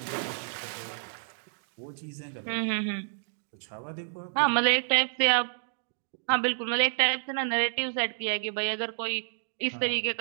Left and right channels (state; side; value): silent; left; digital silence